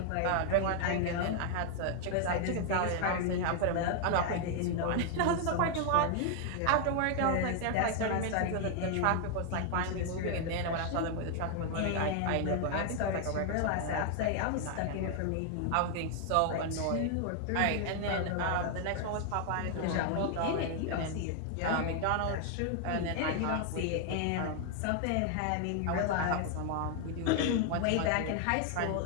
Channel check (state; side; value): different; both; correlation 0.00